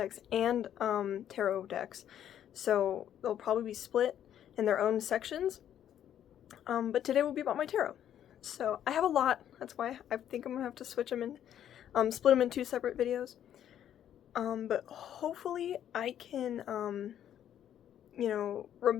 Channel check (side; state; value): right; quieter; 10.3 dB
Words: and tarot decks, so they'll probably be split in their own sections. But today will be about my tarot. So I have a lot, that's why I think I'm gonna have to switch them in, split them in two separate videos. But hopefully I can,